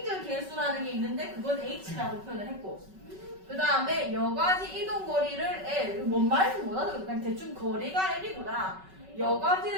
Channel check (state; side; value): late; left; 5.3 ms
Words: 개수라는 게 있는데 그건 H라고 표현을 했고 그 다음에 여과지 이동 거리를 L 뭔 말인지 못하더라도 그냥 대충 거리가 L이구나.